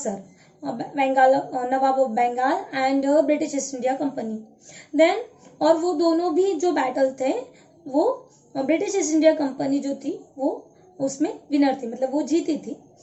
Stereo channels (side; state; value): both; identical; correlation 1.00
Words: Bengal, nawab of Bengal and British East India Company. Then और वो दोनों भी जो बैटल थे वो ब्रिटिश ईस्ट इंडिया कंपनी जो थी वो उसमें विनर थी, मतलब वो जीती थी।